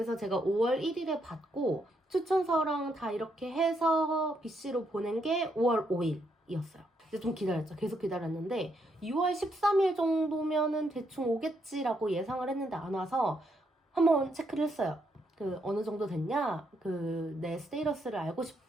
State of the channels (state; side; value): normal; both; correlation 0.76